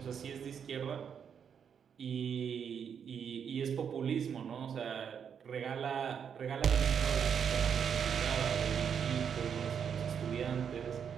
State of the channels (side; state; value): left; quieter; 7.5 dB